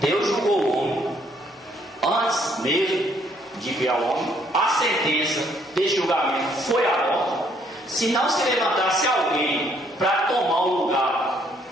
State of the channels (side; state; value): both; normal; correlation 0.67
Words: julgou o homem antes mesmo de criar o homem. A sentença desse julgamento foi a morte. Se não se levantasse alguém para tomar o lugar